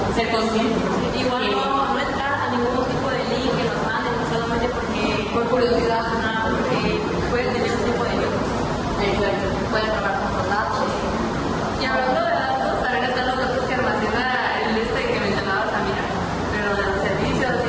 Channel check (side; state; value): both; identical; correlation 1.00